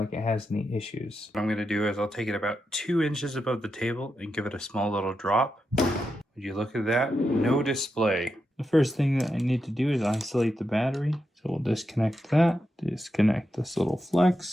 it has any issues. What I'm going to do is I'll take it about 2 inches above the table and give it a small little drop. Would you look at that? No display. The first thing that I need to do is isolate the battery. So we'll disconnect that, disconnect this little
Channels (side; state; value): both; normal; correlation 0.86